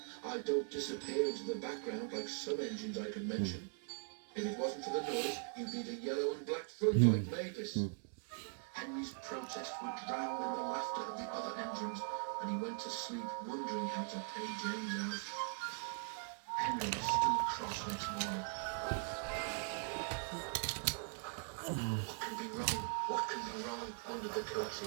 I don't disappear into the background like some engines I could mention. If it wasn't for the noise, you'd need a yellow and black front like Mavis. Henry's protests were drowned in the laughter of the other engines, and he went to sleep wondering how to pay James out. Henry was still cross next morning. What can be wrong? What can be wrong? Wondered the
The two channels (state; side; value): silent; left; 50 dB below the other